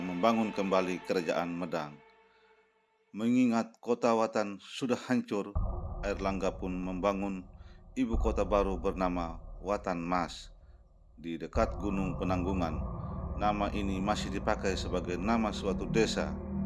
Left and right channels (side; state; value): both; identical; correlation 1.00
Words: kembali kerajaan Medang. Mengingat kota Watan sudah hancur, Airlangga pun membangun ibu kota baru bernama Watan Mas di dekat Gunung Penanggungan. Nama ini masih dipakai sebagai nama suatu desa,